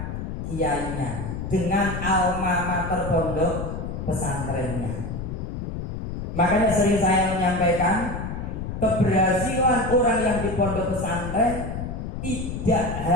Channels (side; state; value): left; noise; rumble, 5 dB below the sound